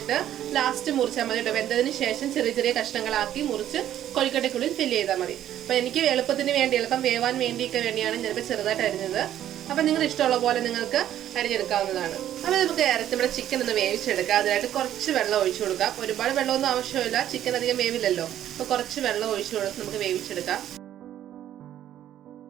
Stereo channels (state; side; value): quieter; left; 11.5 dB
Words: ലാസ്റ്റ് മുറിച്ചാൽ മതി കേട്ടോ. വെന്തതിന് ശേഷം ചെറിയ ചെറിയ കഷ്ണങ്ങളാക്കി മുറിച്ച് കൊഴുക്കട്ടയ്ക്കുള്ളിൽ ഫില്ല് ചെയ്താൽ മതി. അപ്പൊ എനിക്ക് എളുപ്പത്തിന് വേണ്ടി, എളുപ്പം വേവാൻ വേണ്ടിയൊക്കെ വേണ്ടിയാണ് ഞാനിപ്പോൾ ചെറുതായിട്ട് അരിഞ്ഞത്. അപ്പൊ നിങ്ങൾ ഇഷ്ടമുള്ള പോലെ നിങ്ങൾക്ക് അരിഞ്ഞെടുക്കാവുന്നതാണ്. അപ്പൊ നമുക്ക് നമ്മുടെ ചിക്കൻ ഒന്ന് വേവിച്ചെടുക്കാം. അതിനായിട്ട് കുറച്ച് വെള്ളം ഒഴിച്ചു കൊടുക്കാം. ഒരുപാട് വെള്ളമൊന്നും ആവശ്യമില്ല, ചിക്കൻ അധികം വേവില്ലല്ലോ. അപ്പൊ കുറച്ച് വെള്ളം ഒഴിച്ചു കൊടുത്ത് നമുക്ക് വേവിച്ചെടുക്കാം.